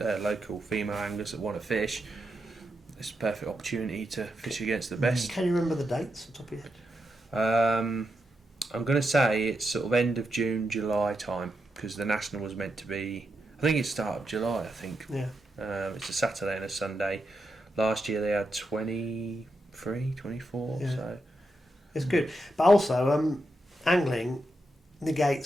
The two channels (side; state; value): both; normal; correlation 0.85